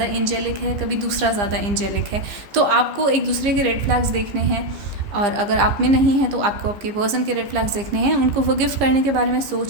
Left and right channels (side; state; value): left; late; 14 ms